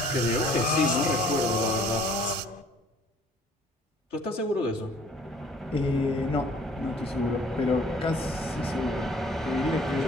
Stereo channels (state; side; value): normal; both; correlation 0.55